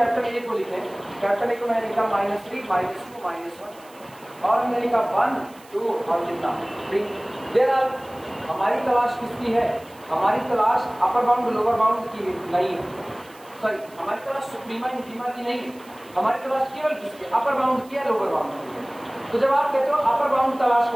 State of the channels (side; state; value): right; noise; hiss, 25 dB below the sound